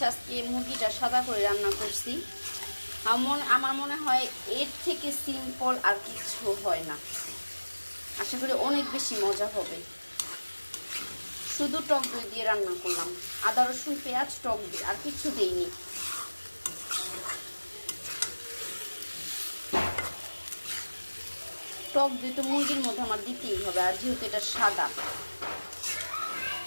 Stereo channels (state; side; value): inverted; both; correlation -1.00